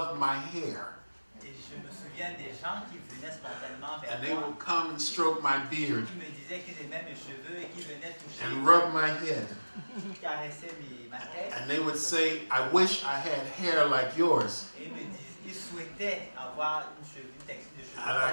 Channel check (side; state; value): both; inverted; correlation -1.00